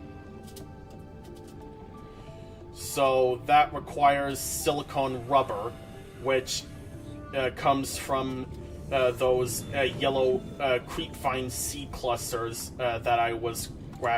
So that requires silicone rubber, which comes from those yellow creepvine seed clusters that I was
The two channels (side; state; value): both; identical; correlation 1.00